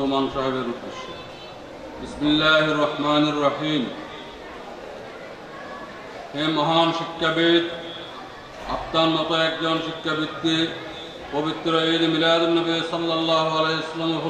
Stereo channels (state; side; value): identical; both; correlation 1.00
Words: সাহেবের উদ্দেশ্যে। বিসমিল্লাহির রহমানির রহিম। হে মহান শিক্ষাবিদ, আপনার মতো একজন শিক্ষাবিদকে পবিত্র ঈদ মিলাদুন্নবী সাল্লাল্লাহু আলাইহি ওয়াসাল্লাম